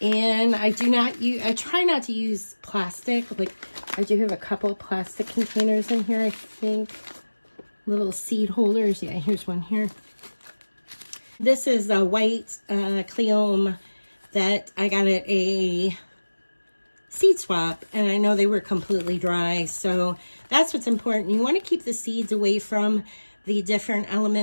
And I try not to use plastic. Like, I do have a couple of plastic containers in here, I think. Little seed holders. Yeah, here's one here. This is a white Cleome that I got at a seed swap, and I know they were completely dry. So that's what's important. You want to keep the seeds away from the different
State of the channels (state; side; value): inverted; both; correlation -1.00